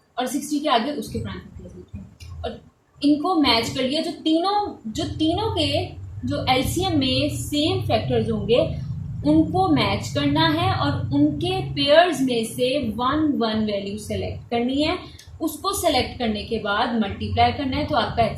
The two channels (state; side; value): identical; both; correlation 1.00